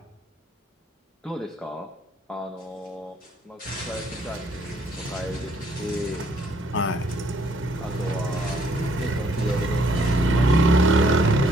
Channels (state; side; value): normal; both; correlation 0.67